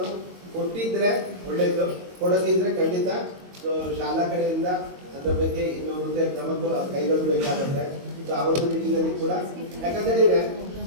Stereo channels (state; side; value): late; left; 22 ms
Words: ಕೊಟ್ಟಿದ್ರೆ ಒಳ್ಳೆಯದು, ಕೊಡದಿದ್ರೆ ಖಂಡಿತ ಸೊ ಶಾಲಾ ಕಡೆಯಿಂದ ಅದರ ಬಗ್ಗೆ ಇನ್ನು ಮುಂದೆ ಕ್ರಮ ಕೈಗೊಳ್ಳಬೇಕಾಗುತ್ತೆ. ಸೊ ಆ ಒಂದು ನಿಟ್ಟಿನಲ್ಲಿ ಕೂಡ ಯಾಕಂತೇಳಿದ್ರೆ